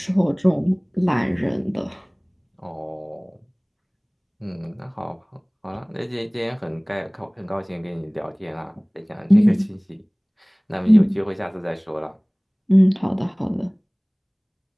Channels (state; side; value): identical; both; correlation 1.00